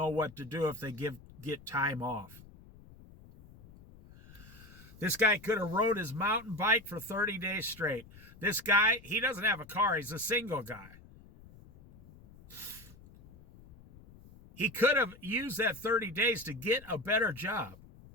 what to do if they get time off. This guy could have rode his mountain bike for 30 days straight. This guy, he doesn't have a car. He's a single guy. He could have used that 30 days to get a better job.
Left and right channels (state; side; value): noise; left; rumble, 21 dB below the sound